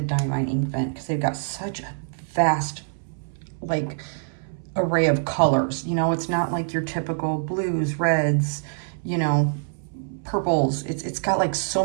Inkvent, because they've got such a vast like array of colors. You know, it's not like your typical blues, reds, you know, purples. It's got like so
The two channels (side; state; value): left; silent; 62 dB below the other